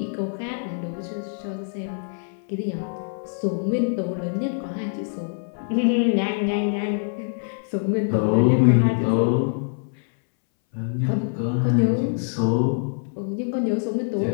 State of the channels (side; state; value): right; silent; 62 dB below the other